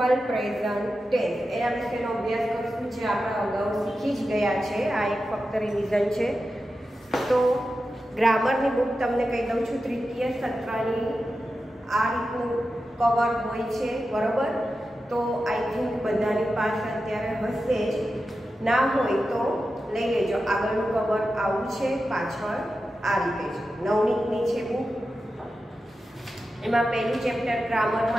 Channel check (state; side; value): normal; both; correlation 0.91